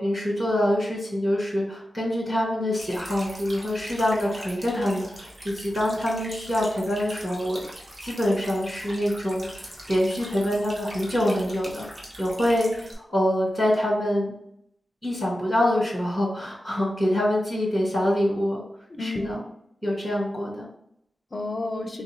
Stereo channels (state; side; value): normal; both; correlation 0.92